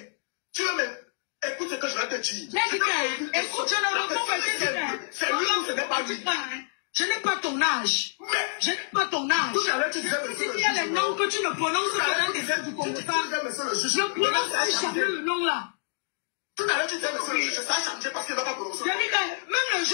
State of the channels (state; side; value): silent; right; digital silence